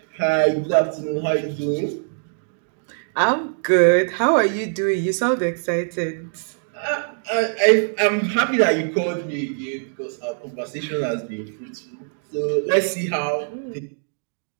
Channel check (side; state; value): left; silent; digital silence